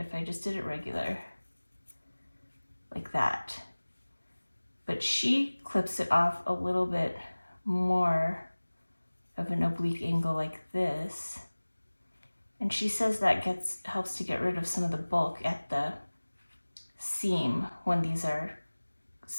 I just did it regular, like that. But she clips it off a little bit more of an oblique angle like this. And she says that helps to get rid of some of the bulk at the seam when these are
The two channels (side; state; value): both; inverted; correlation -1.00